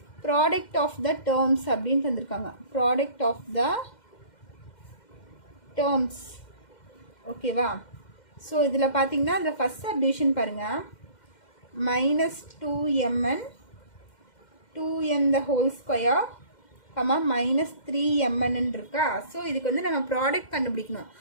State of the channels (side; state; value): right; late; 2.1 ms